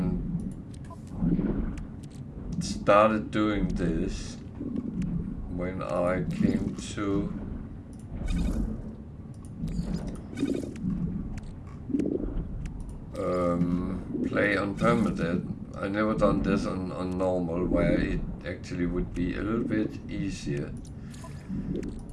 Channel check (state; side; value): identical; both; correlation 1.00